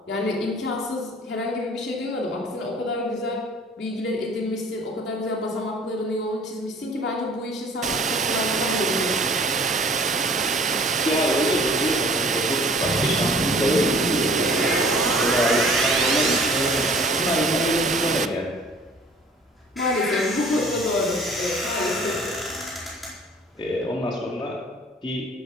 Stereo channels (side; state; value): both; normal; correlation 0.52